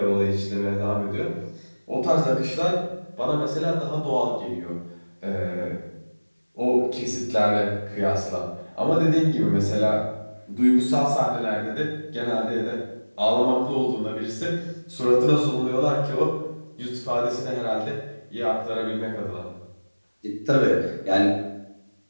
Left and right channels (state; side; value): inverted; both; correlation -1.00